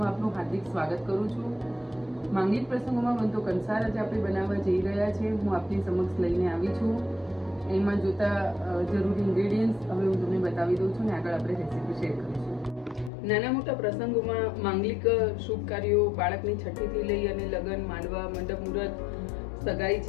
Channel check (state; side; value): drops out; right; at 13.1 s